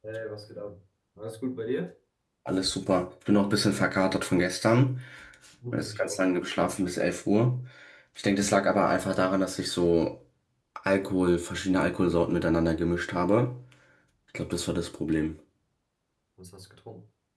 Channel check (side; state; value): both; identical; correlation 1.00